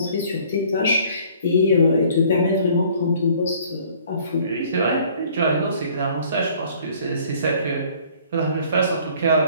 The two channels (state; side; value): inverted; both; correlation -0.56